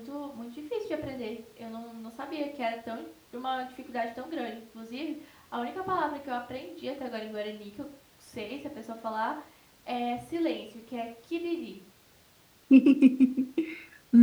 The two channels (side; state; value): both; identical; correlation 1.00